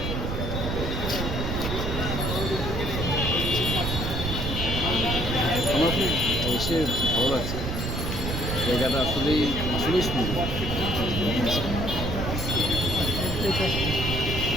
আমার খুব এসে ভালো লাগছে, জায়গাটা আসলেই আসলেই সুন্দর।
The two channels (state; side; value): noise; right; rumble, 3 dB below the sound